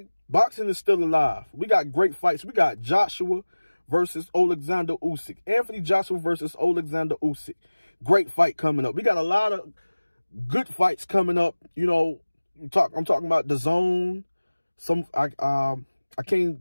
boxing is still alive. We got great fights. We got Joshua versus Alexander Usyk. Anthony Joshua versus Alexander Usyk. Great fight coming up. We got a lot of good fights coming up. You know, I'm talking about the zone. I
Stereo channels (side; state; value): both; inverted; correlation -1.00